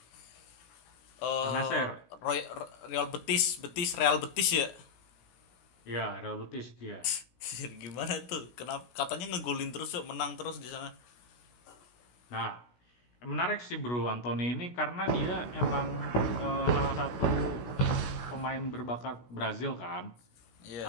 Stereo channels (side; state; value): right; late; 16 ms